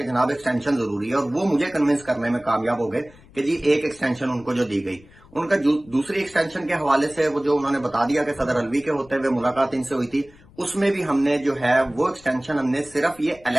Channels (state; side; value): noise; left; rumble, 25 dB below the sound